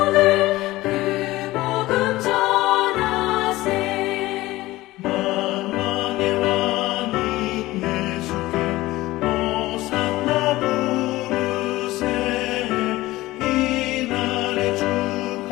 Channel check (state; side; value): quieter; right; 18.1 dB